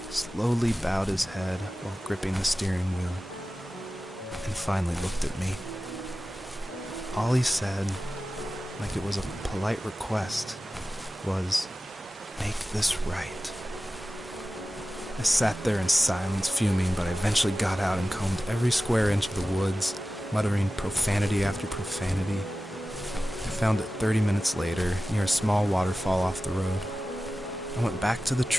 slowly bowed his head while gripping the steering wheel, and finally looked at me. All he said, like it was a polite request, was, "Make this right." I sat there in silence, fuming, but I eventually got out and combed every square inch of the woods, muttering profanity after profanity. I found it 30 minutes later, near a small waterfall off the road. I went back to the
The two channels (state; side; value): normal; both; correlation 0.95